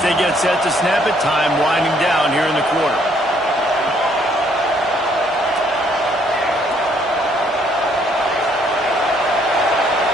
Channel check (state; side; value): normal; both; correlation 0.66